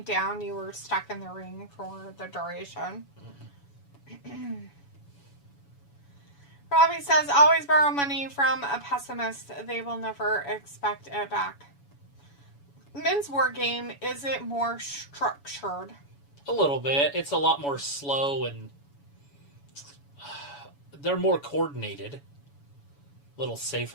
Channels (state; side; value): late; right; 7.1 ms